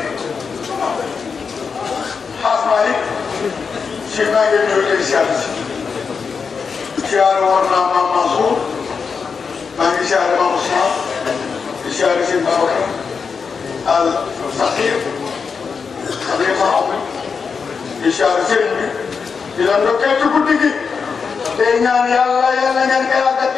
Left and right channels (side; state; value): right; quieter; 5.6 dB